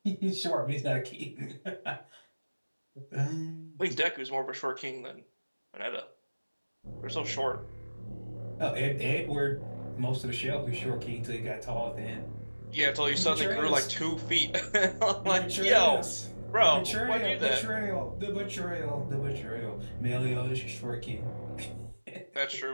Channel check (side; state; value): both; inverted; correlation -1.00